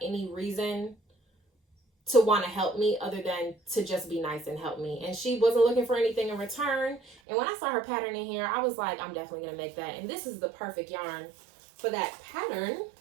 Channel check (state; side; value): drops out; left; at 7.2 s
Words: any reason to want to help me other than to just be nice and help me. And she wasn't looking for anything in return. And when I saw her pattern in here, I was like, I'm definitely going to make that. And this is the perfect yarn for that pattern.